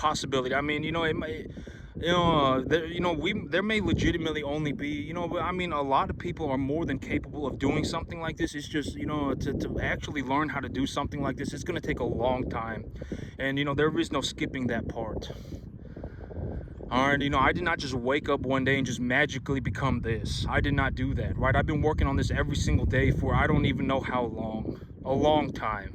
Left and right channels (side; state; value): both; identical; correlation 1.00